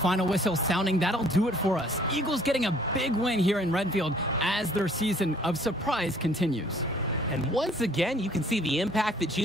whistle sounding, that'll do it for us. Eagles getting a big win here in Redfield as their season of surprise continues. And once again, you can see the impact that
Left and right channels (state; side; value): normal; both; correlation 0.58